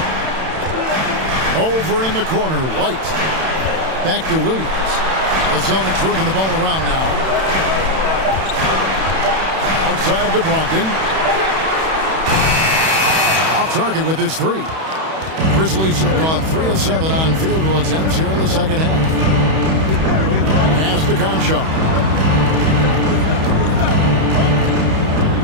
Over in the corner, White. Back to Williams. The Celtics working the ball around now. Outside to Brogdon. Off target with his 3. Grizzlies have gone 3 of 7 on field goal attempts here in the second half. Pass to Conchar.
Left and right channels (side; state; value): left; late; 31 ms